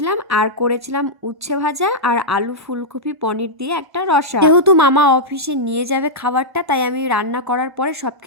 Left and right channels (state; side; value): late; left; 1.1 ms